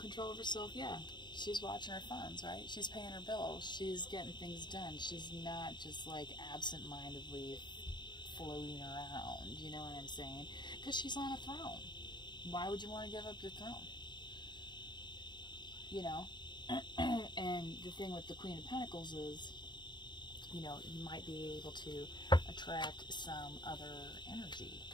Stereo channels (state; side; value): late; right; 0.22 ms